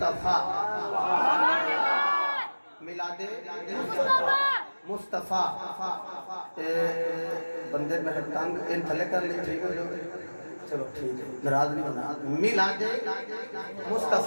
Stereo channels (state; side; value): inverted; both; correlation -1.00